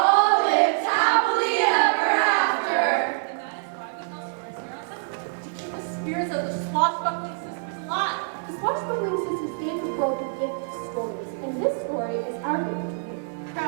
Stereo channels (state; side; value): silent; left; digital silence